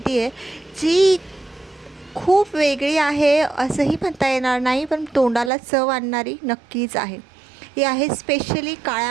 आहे जी खूप वेगळी आहे असंही म्हणता येणार नाही, पण तोंडाला चव आणणारी नक्कीच आहे. ही आहे स्पेशली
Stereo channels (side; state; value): left; drops out; at 5.5 s